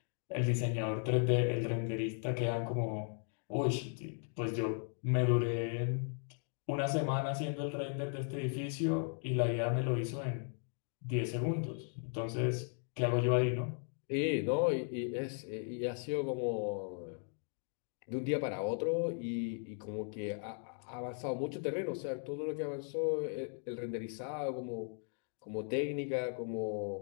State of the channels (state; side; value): silent; right; 53 dB below the other